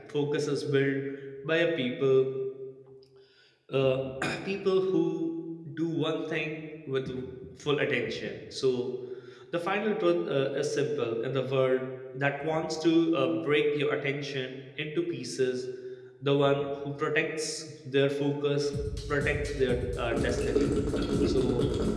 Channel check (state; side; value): identical; both; correlation 1.00